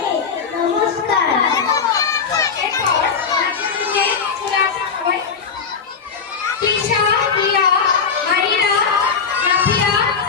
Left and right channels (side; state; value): right; quieter; 5.9 dB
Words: নমস্কার। এরপর নাচের দিকে চলে আসা সবাই। তৃষা, হিয়া, মাহিরা, নাফিয়া,